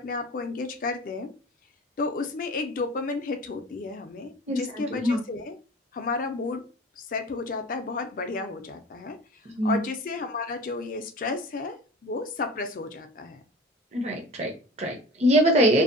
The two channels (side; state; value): both; normal; correlation 0.39